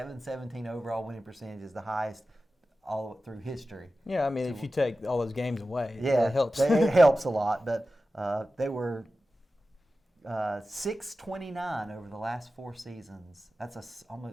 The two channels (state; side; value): normal; both; correlation 0.94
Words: overall winning percentage is the highest all through history. Yeah, I mean, if you take all those games away, it helps. It helps a lot. But they were 629 over the last 4 seasons. That's